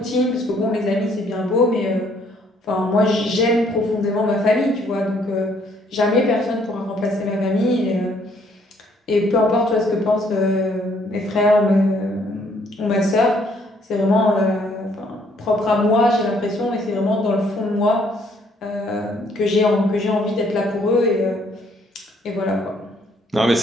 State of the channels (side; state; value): both; normal; correlation 0.66